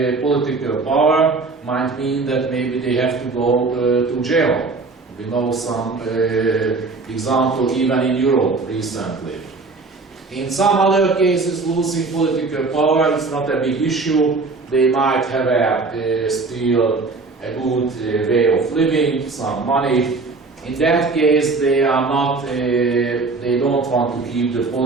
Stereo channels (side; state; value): left; quieter; 3.9 dB